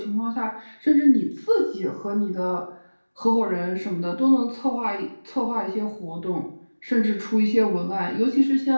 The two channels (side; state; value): both; inverted; correlation -1.00